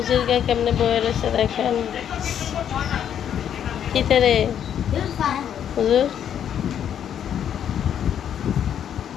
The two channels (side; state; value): right; quieter; 9.3 dB